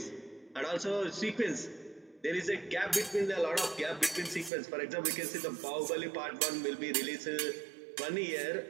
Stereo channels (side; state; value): left; drops out; at 4.5 s